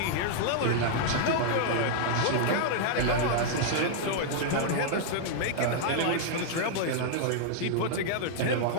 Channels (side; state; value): both; different; correlation -0.01